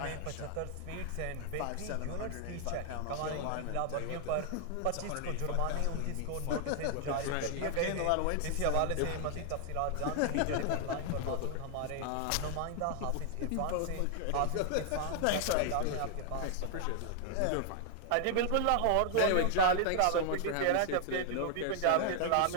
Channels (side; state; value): both; different; correlation 0.00